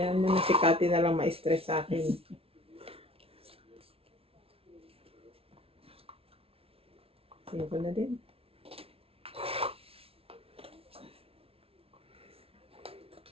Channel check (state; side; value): late; left; 0.27 ms